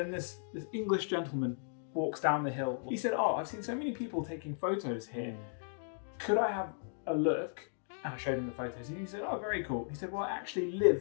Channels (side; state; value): right; silent; digital silence